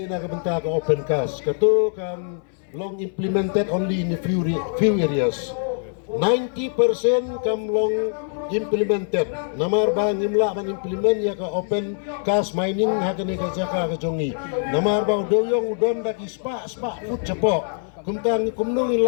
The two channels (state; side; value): silent; right; 60 dB below the other